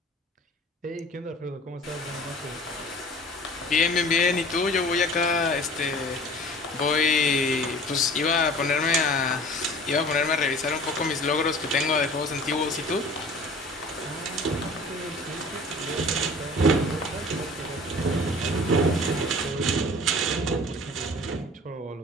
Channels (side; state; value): both; normal; correlation 0.45